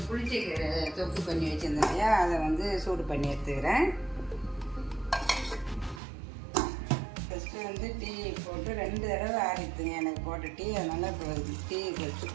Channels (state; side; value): drops out; left; at 6.0 s